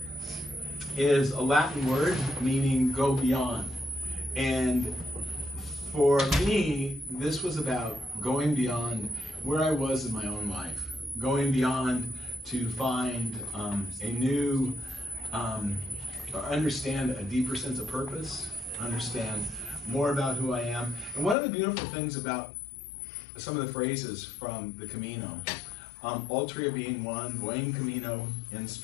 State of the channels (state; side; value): drops out; right; at 21.4 s